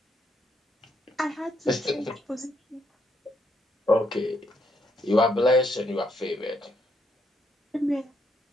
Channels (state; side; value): normal; both; correlation 0.75